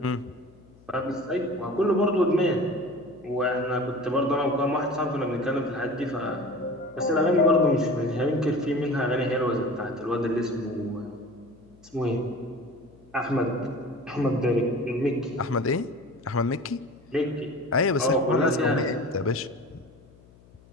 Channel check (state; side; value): noise; left; hum, 26 dB below the sound